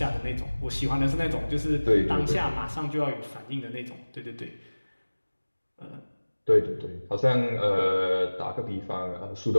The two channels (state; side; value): inverted; both; correlation -1.00